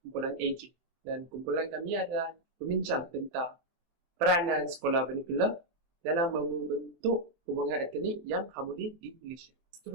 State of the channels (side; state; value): left; late; 23 ms